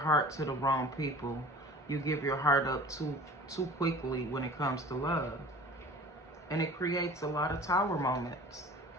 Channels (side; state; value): both; normal; correlation 0.43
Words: to the wrong people. You give your heart up too quickly when it comes to love. And it creates a lot of tower moments.